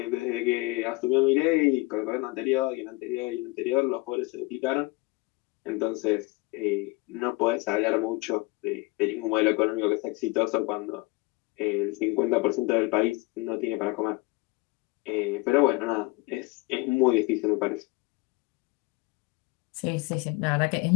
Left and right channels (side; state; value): right; quieter; 23.7 dB